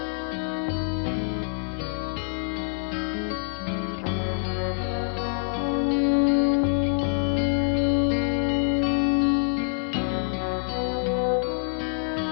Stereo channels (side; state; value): right; silent; digital silence